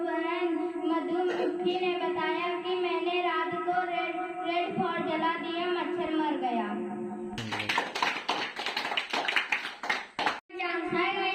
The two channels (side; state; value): both; identical; correlation 1.00